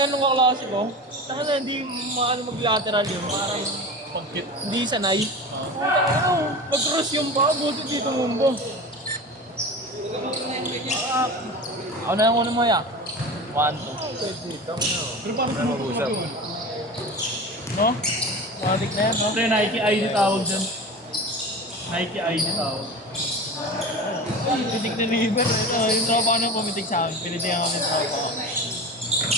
ng kaklase ko. Taka na, hindi maano mag-lateral yun, parang pagkit, hindi sanay. Mag-cross yung pa, buti dito mumbo. Ako na yung una mo ya. 1, 2. Pero parang mag-usap. No? Matik na yan, no? Pre, Nike ID tawag dyan. Nike ID tawag. Ay, pitik na liver. Yung tropa ko na pumitik sa akin. Pinitihan kami sa tropa ko.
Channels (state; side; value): normal; both; correlation 0.31